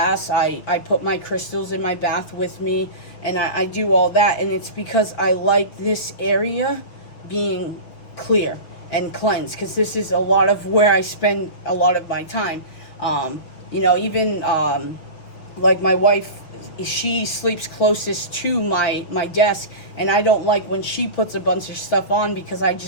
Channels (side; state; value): right; late; 6.3 ms